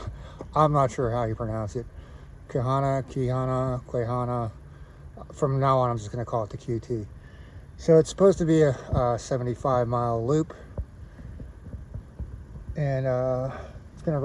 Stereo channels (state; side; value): identical; both; correlation 1.00